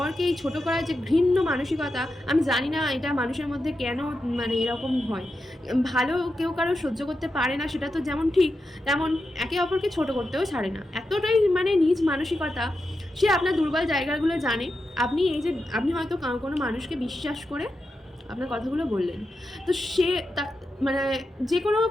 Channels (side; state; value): both; normal; correlation 0.88